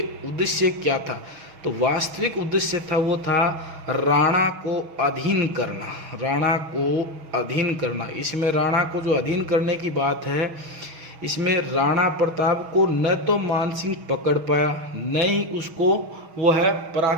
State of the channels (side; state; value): left; late; 6.3 ms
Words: उद्देश्य क्या था, तो वास्तविक उद्देश्य था वो था राणा को अधीन करना। इसमें राणा को जो अधीन करने की बात है, इसमें राणा प्रताप को न तो मान सिंह पकड़ पाया, न ही उसको वो है